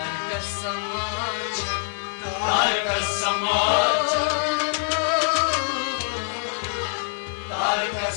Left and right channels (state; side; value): silent; right; 62 dB below the other